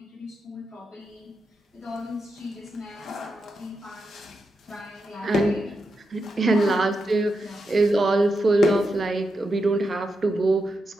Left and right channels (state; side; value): normal; both; correlation 0.86